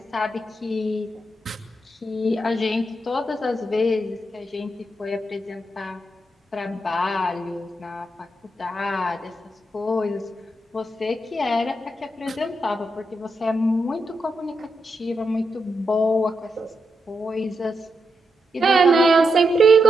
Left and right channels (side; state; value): both; normal; correlation 0.84